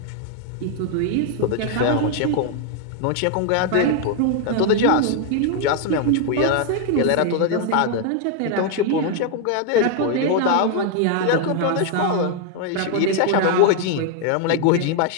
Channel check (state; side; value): different; both; correlation 0.00